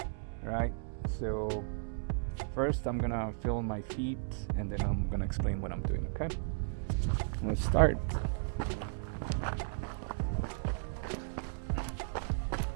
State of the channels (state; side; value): silent; left; digital silence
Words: Right, so first I'm gonna feel my feet and then I'm gonna explain what I'm doing, okay? Let's start.